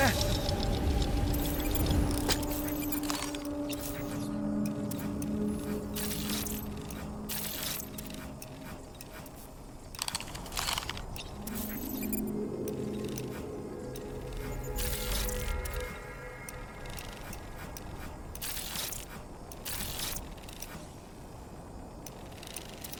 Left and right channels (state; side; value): identical; both; correlation 1.00